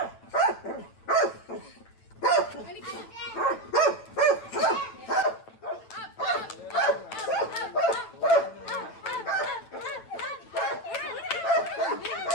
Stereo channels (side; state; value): right; late; 9.1 ms